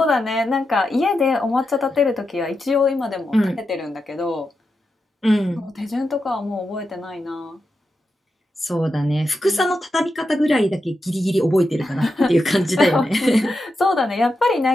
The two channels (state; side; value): normal; both; correlation 0.88